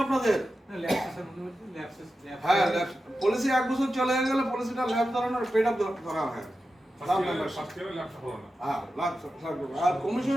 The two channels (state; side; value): normal; both; correlation 0.92